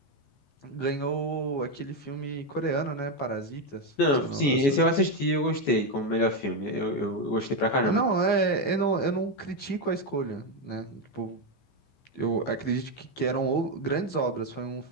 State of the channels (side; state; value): right; late; 14 ms